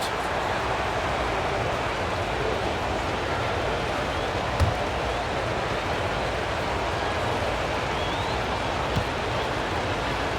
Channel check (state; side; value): identical; both; correlation 1.00